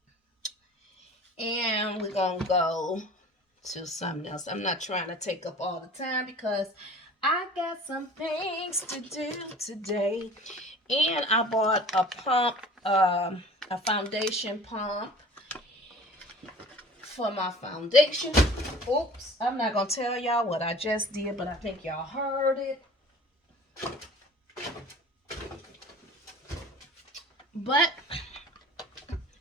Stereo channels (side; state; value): both; normal; correlation 0.45